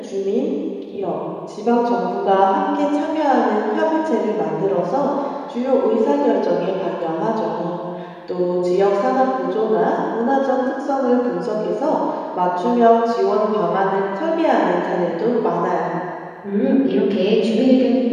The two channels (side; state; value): both; identical; correlation 1.00